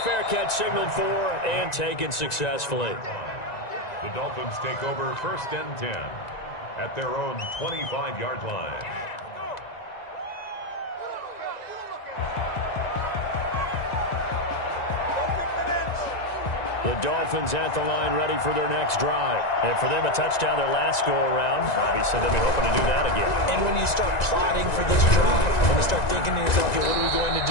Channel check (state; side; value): late; right; 1.9 ms